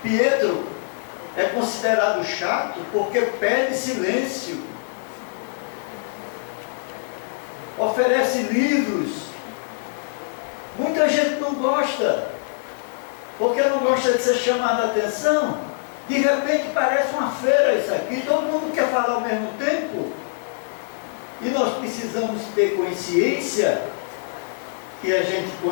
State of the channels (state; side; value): silent; right; digital silence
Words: Pietro é considerado chato porque pede silêncio. Oferece livros. Muita gente não gosta, porque não gosta de ser chamada a atenção. De repente parece uma feira isso aqui, todo mundo quer falar ao mesmo tempo. E nós precisamos ter consciência que a gente,